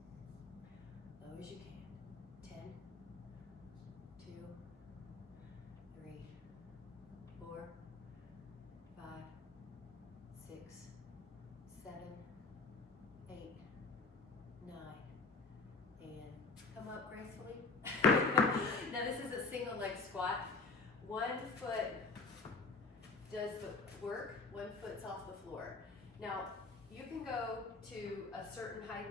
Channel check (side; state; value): right; quieter; 3.9 dB